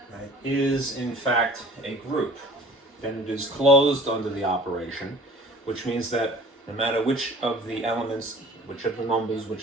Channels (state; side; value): normal; both; correlation 0.47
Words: right, is in fact a group, then it is closed under the operation, which means that no matter which of the elements, which of the numbers,